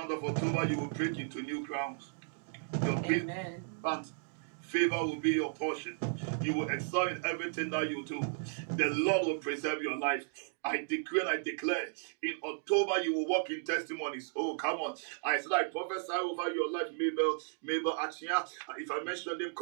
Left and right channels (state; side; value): silent; left; digital silence